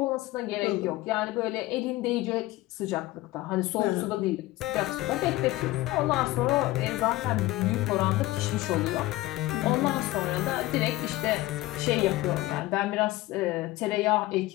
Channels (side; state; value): right; quieter; 18.1 dB